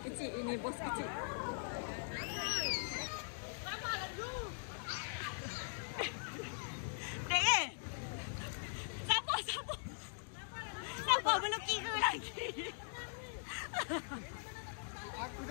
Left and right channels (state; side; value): silent; right; digital silence